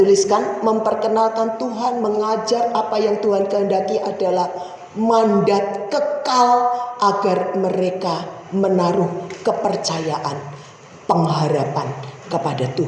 memperkenalkan Tuhan, mengajar apa yang Tuhan kehendaki adalah mandat kekal agar mereka menaruh kepercayaan, pengharapan kepada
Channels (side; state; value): both; identical; correlation 1.00